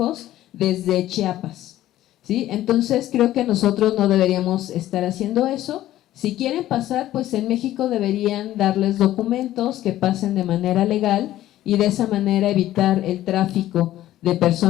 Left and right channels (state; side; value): quieter; right; 13.9 dB